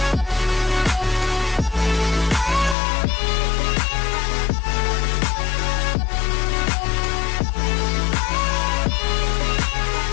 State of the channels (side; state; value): right; drops out; at 2.8 s